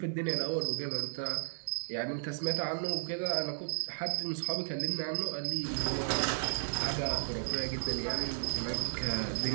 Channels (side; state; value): left; silent; digital silence